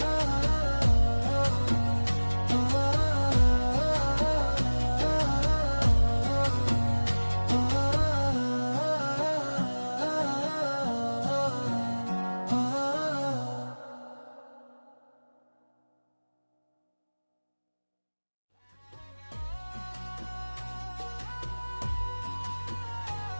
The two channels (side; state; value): both; inverted; correlation -1.00